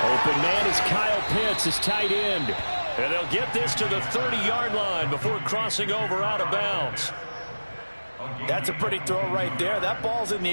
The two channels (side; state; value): both; inverted; correlation -1.00